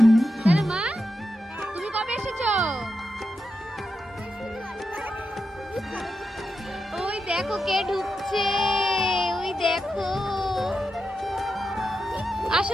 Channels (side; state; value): both; normal; correlation 0.87